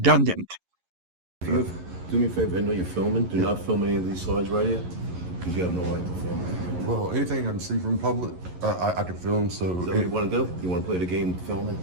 Do me a favor, I know you're filming. Do not film any of these slides right here, because you have no right to film. Well, anything I can see from public, I can film, so... Is that what you want to do? You want to play the game of filming?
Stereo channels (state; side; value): late; left; 11 ms